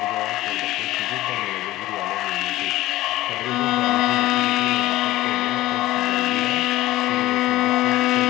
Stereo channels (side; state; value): right; quieter; 16.6 dB